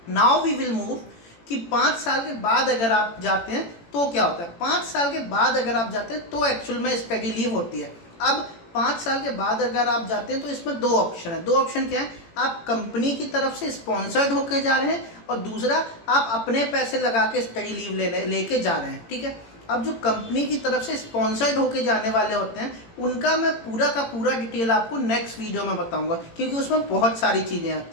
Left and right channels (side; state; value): right; late; 18 ms